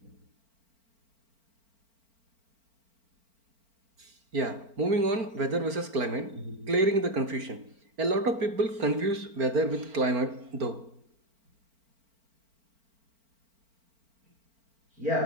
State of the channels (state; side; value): late; left; 4.4 ms